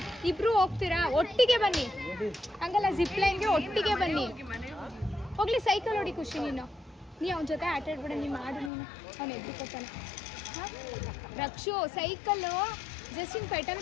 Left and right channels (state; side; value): drops out; right; at 8.7 s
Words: ಇಬ್ರು ಹೋಗ್ತೀರಾ? ಒಟ್ಟಿಗೆ ಬನ್ನಿ. ಹಂಗಲ್ಲ, ಜಿಪ್ ಲೈನ್ಗೆ ಒಟ್ಟಿಗೆ ಬನ್ನಿ. ಹೋಗ್ಲಿ, ಸೈಕಲ್ ಹೊಡಿ ಖುಷಿ. ನೀನು ಅವನ ಜೊತೆ ಆಟ ಆಡ್ಬೇಡ. ನೀನು ಮಾಡು, ನೀನು ಅವ್ನು ಎದ್ದು ಕೊಡ್ತಾನೆ. ರಕ್ಷು, ಸೈಕಲ್ಲು ಜಸ್ಟ್ ಹಿಂಗೆ ಪೆಟಲ್